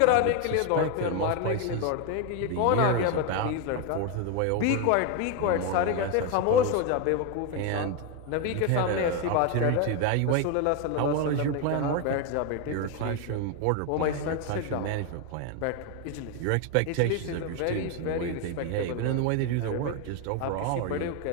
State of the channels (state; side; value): different; both; correlation 0.01